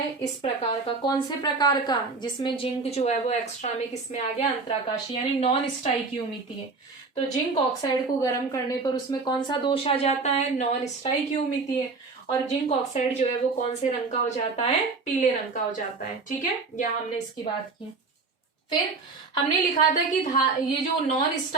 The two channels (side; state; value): left; quieter; 4.1 dB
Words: इस प्रकार का। कौन से प्रकार का, जिसमें जिंक जो है वो एक्स्ट्रा में किसमें आ गया, अंतराकाशीय यानी नॉन स्टाइकियोमितीय। तो जिंक ऑक्साइड को गर्म करने पर उसमें कौन सा दोष आ जाता है, नॉन स्टाइकियोमितीय, और जिंक ऑक्साइड जो है वो कौन से रंग का हो जाता है, पीले रंग का हो जाता है। ठीक है, यहाँ हमने इसकी बात की। फिर हमने लिखा था कि ये जो नॉन